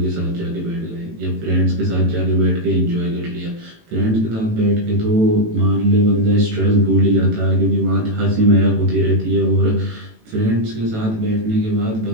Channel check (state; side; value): late; left; 18 ms